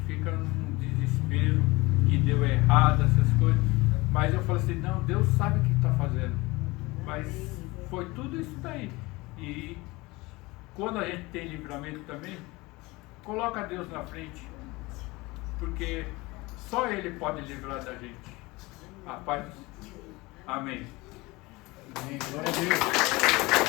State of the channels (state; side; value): quieter; right; 22.5 dB